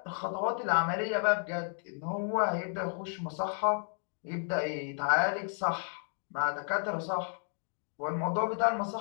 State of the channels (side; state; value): right; silent; 56 dB below the other